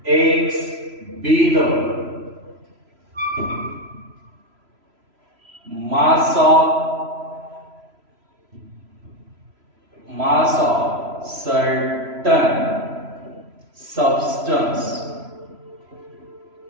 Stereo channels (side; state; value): left; late; 3.0 ms